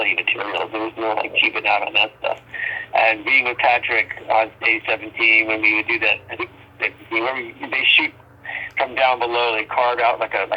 materials. There was no, cheaping out on that stuff. And being with Patrick on stage 17, when we would do that, I think, they shoot from down below. They carve out like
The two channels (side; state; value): both; identical; correlation 1.00